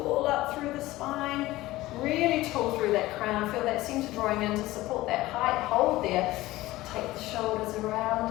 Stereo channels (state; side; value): quieter; right; 17.7 dB